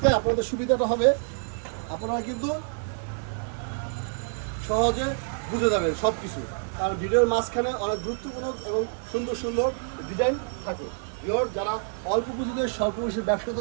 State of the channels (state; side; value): silent; left; digital silence